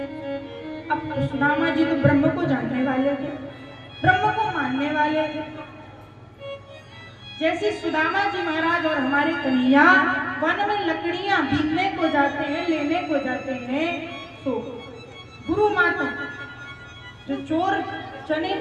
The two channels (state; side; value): identical; both; correlation 1.00